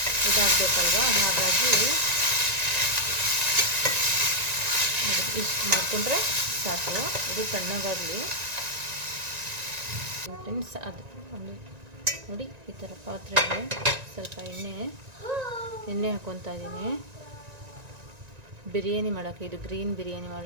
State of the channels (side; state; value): left; late; 1.9 ms